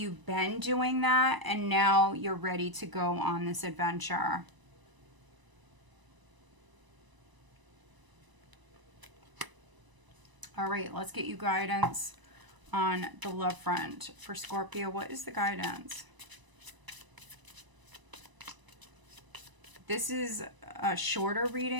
been doing that and now you're ready to go on this adventure. All right, let's get you guidance on the love front for Scorpio. What is the guidance? This is a shorter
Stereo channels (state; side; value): late; left; 1.0 ms